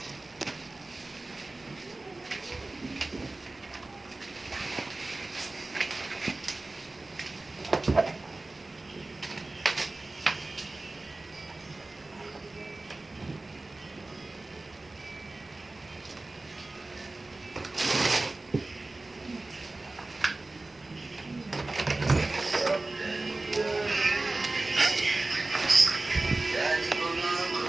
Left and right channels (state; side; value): quieter; left; 3.0 dB